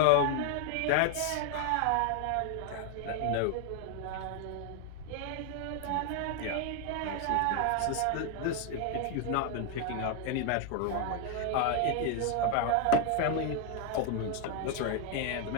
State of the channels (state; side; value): different; both; correlation 0.00